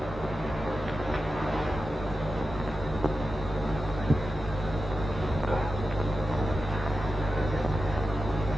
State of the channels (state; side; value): normal; both; correlation 0.91